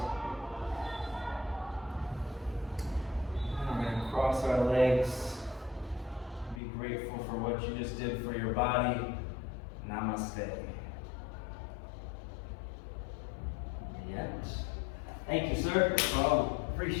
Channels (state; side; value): drops out; right; at 6.6 s